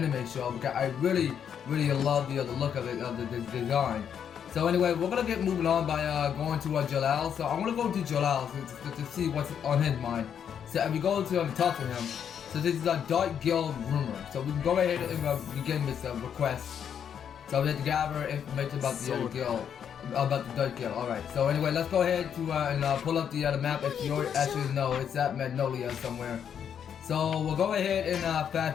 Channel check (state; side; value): quieter; right; 8.3 dB